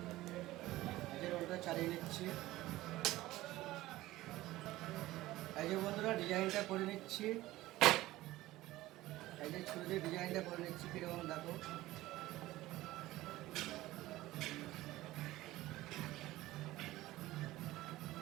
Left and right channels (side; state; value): left; quieter; 17.0 dB